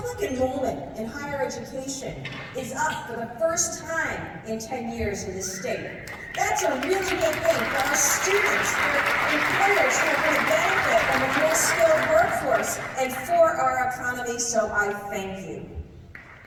enrollment in higher education is up for the first time in 10 years in this state. That's a really good thing for our students, for employers who are going to benefit from a more skilled workforce, and for our economy, so I thank you.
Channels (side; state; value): both; identical; correlation 1.00